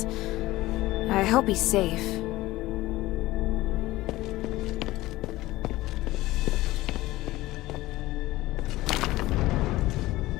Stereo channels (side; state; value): right; quieter; 17.8 dB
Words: I hope he's safe.